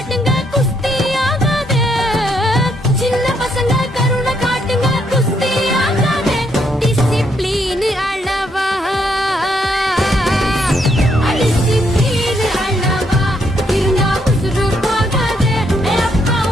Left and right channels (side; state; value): both; normal; correlation 0.74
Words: குஸ்தி ஆகாது. சின்ன பசங்க கருணை காட்டுங்க குஸ்தி ஆகாது. டிசிப்ளின் அளவா டிசிப்ளின் அளவா இருந்தா உசுறு போகாது. அப்பா